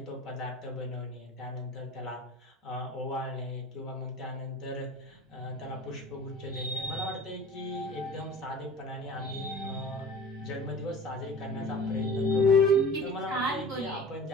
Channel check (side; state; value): both; normal; correlation 0.39